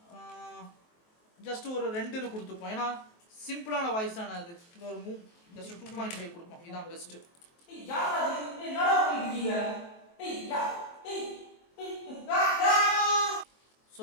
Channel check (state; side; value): late; right; 23 ms